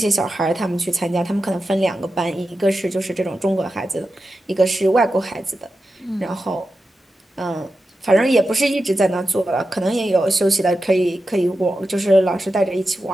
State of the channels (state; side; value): normal; both; correlation 0.91